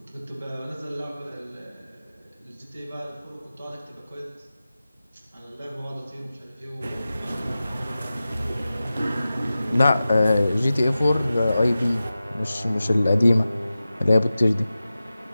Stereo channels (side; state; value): both; inverted; correlation -0.95